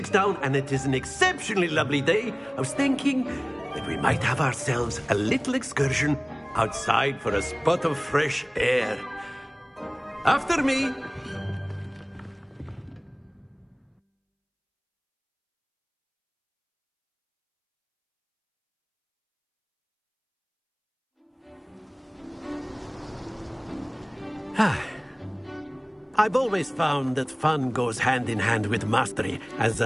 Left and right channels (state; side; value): identical; both; correlation 1.00